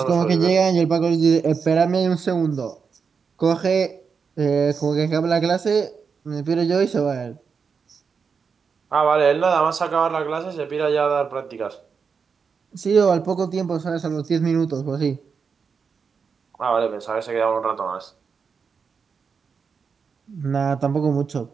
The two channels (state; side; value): quieter; left; 5.8 dB